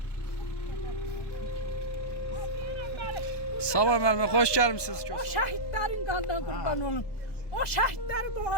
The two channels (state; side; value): late; right; 1.2 ms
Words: Sabah Məlmə, xoş gəlmisiniz. O şəhidlərin qanına qurban olum. O şəhidlərin